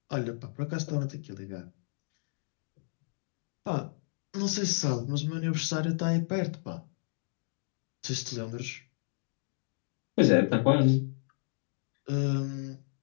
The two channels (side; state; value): right; silent; digital silence